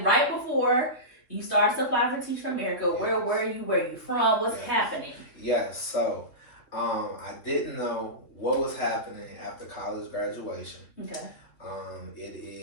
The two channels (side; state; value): right; late; 3.0 ms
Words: right before you started to apply for Teach for America. Yes. Where were you? Where are you from? What's happening? Yes, so I didn't know what was happening after college graduation. Okay. It